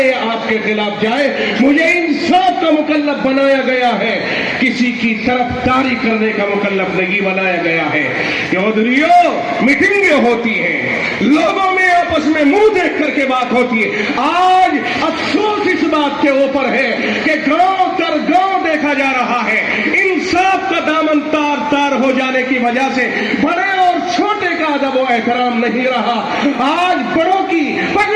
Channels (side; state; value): both; identical; correlation 1.00